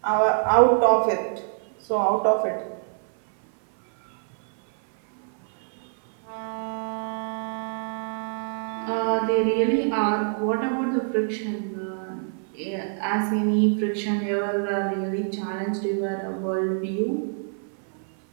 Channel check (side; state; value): left; silent; 58 dB below the other